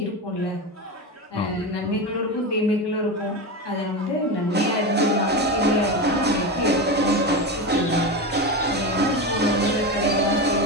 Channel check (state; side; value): normal; both; correlation 0.19